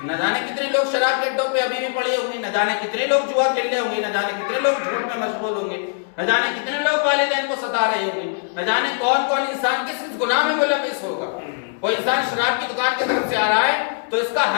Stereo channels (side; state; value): right; silent; digital silence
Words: نہ جانے کتنے لوگ شراب کے اڈوں پہ ابھی بھی پڑے ہوں گے، نہ جانے کتنے لوگ جوا کھیلنے ہوں گے، نہ جانے کتنے لوگ جھوٹ میں مشغول ہوں گے، نہ جانے کتنے لوگ والدین کو ستا رہے ہوں گے، نہ جانے کون کون انسان کس کس گناہ میں ملوث ہوگا۔ کوئی انسان شراب کی دکان کی طرف سے آ رہا ہے تو اس کا